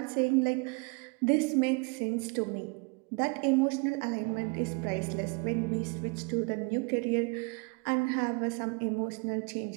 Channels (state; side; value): quieter; left; 31.1 dB